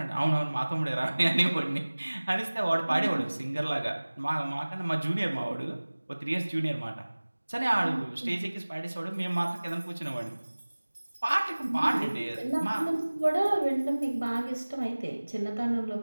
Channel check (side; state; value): both; inverted; correlation -1.00